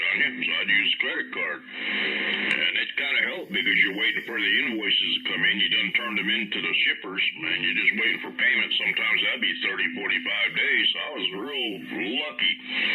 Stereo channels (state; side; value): identical; both; correlation 1.00